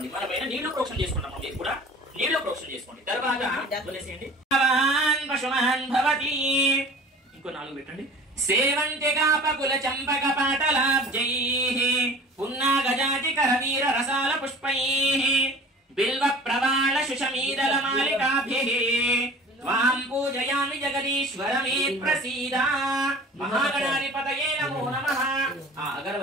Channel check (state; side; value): normal; both; correlation 0.43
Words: మన పైన నీళ్లు ప్రోక్షణ చేసుకుంటాం, మీరు కూడా నీళ్లు ప్రోక్షణ చేసుకోండి. తర్వాత వదిలేసేయండి. ఇంకో 4 పెట్టండి. సేవంతి కాపకుల చంపక పాటలాబ్జైః పున్నాగజాతి కరవీర రసాల పుష్పైః బిల్వ ప్రవాళ శుషమీదల మాలికాభిః త్వాం పూజయామి జగదీశ్వర మే ప్రసీద. మహాగణాధిపతయే నమో నమః. ఆ